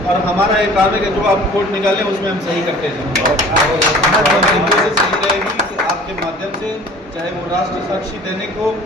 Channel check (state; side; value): normal; both; correlation 0.46